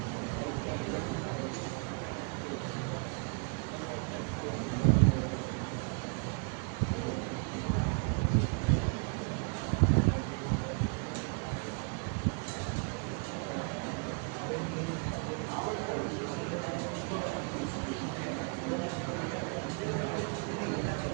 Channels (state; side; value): quieter; left; 39.3 dB